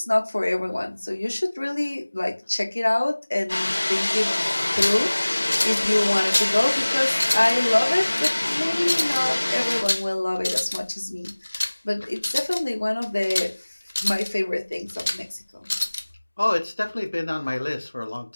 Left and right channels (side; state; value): both; inverted; correlation -1.00